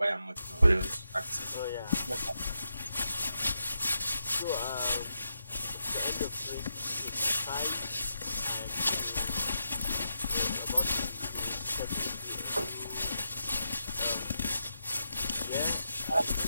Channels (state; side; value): inverted; both; correlation -0.85